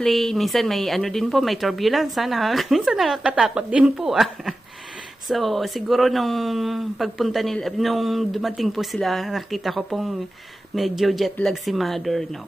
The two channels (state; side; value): normal; both; correlation 0.94